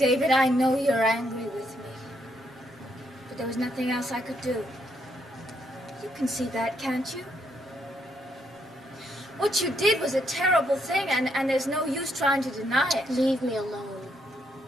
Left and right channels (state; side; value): normal; both; correlation 0.75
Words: I know you're angry with me, but there was nothing else I could do. You can see that, can't you? What you did was a terrible thing, and there's no use trying to deny it. Leave me alone.